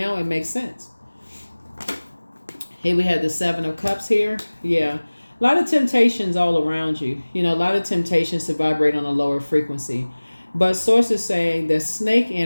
it makes sense. Here we have the Seven of Cups here. Yeah. A lot of temptations all around you. You know, a lot of temptations to vibrate on a lower frequency. But source is saying that snake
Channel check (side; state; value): both; inverted; correlation -1.00